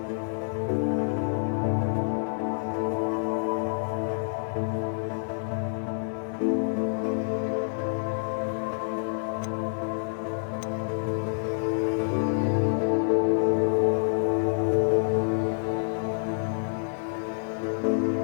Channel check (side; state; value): right; silent; digital silence